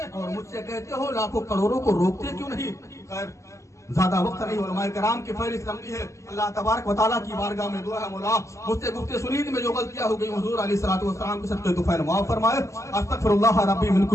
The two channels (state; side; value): late; right; 0.14 ms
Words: और मुझसे कहते हो लाखों करोड़ों को रोकते क्यों नहीं? खैर ज्यादा वक्त नहीं, उलमाए किराम की फहरिस्त लंबी है। अल्लाह तबारक व तआला की बारगाह में दुआ है मौला मुझसे गुफ्ते सुनीद में जो गलतियां हो गई हुजूर अलैहिस्सलातु वस्सलाम के सदक़े तो फैल माफ फरमाए। अस्तगफिरुल्लाह रब्बी मिन